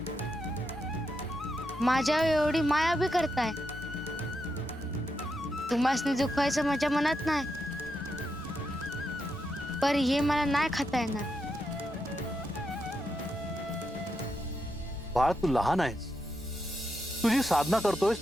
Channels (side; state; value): both; normal; correlation 0.84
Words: माझ्या एवढी माया बी करताय. तुम्हाला दुखवायचं माझ्या मनात नाही, पर हे मला नाही खाता येणार. बाळ, तू लहान आहेस. तुझी साधना करतोयस